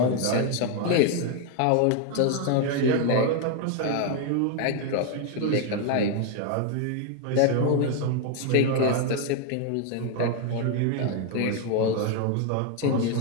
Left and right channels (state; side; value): different; both; correlation 0.01